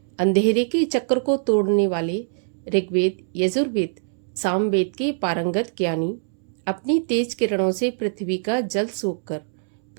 अंधेरे के चक्र को तोड़ने वाले, ऋग्वेद, यजुर्वेद, सामवेद के पारंगत ज्ञानी, अपनी तेज किरणों से पृथ्वी का जल सोखकर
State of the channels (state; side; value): silent; left; 63 dB below the other